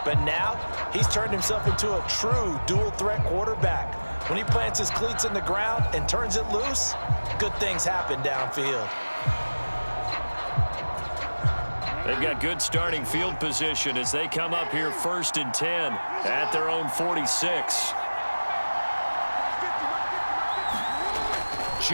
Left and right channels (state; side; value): inverted; both; correlation -1.00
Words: But now, he's turned himself into a true dual-threat quarterback. When he plants his cleats in the ground and turns it loose, good things happen downfield. They've got good starting field position as they come up here 1st and 10 at their own 46.